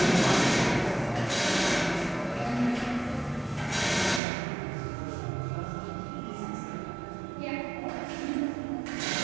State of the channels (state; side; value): drops out; left; at 4.2 s